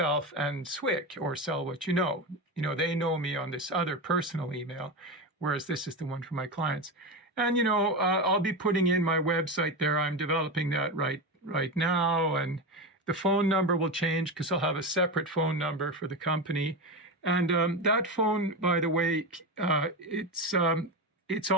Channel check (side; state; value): both; normal; correlation 0.18